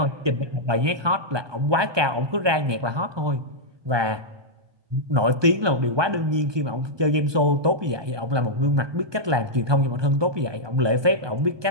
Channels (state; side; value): late; left; 1.2 ms